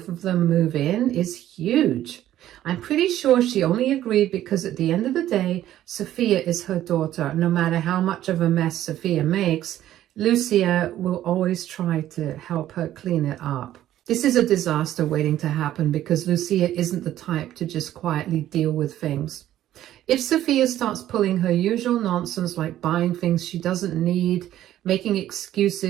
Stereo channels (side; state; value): left; quieter; 12.8 dB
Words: of them move in is huge. I'm pretty sure she only agreed because at the end of the day, Sophia is her daughter. No matter how much of a mess Sophia makes, Lucia will always try to help her clean it up. This is a disaster waiting to happen because Lucia isn't the type to just quietly deal with things. If Sophia starts pulling her usual nonsense like buying things she doesn't need, making